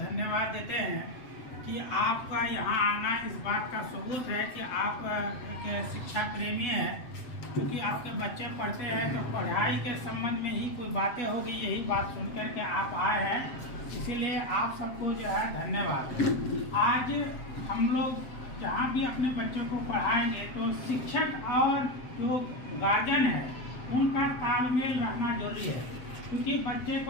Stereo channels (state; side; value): late; right; 7.7 ms